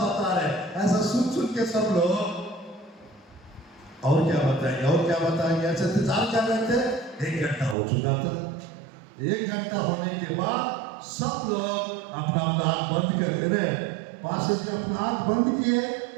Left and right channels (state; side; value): drops out; left; at 7.8 s